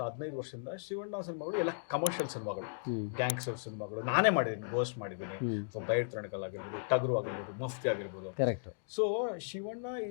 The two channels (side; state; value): right; silent; digital silence